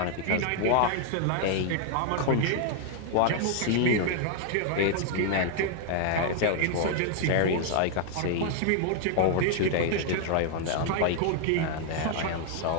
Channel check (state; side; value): different; both; correlation 0.00